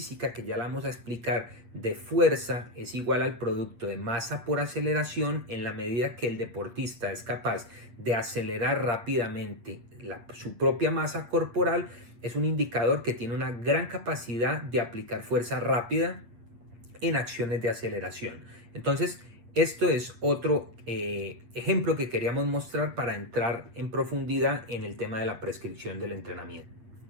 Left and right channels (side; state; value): left; late; 8.5 ms